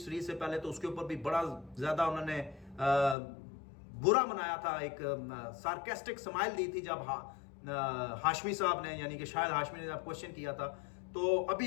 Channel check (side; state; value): right; drops out; at 3.2 s